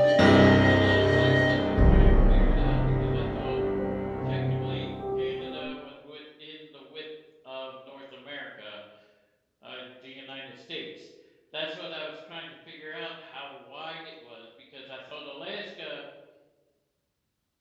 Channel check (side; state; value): both; identical; correlation 1.00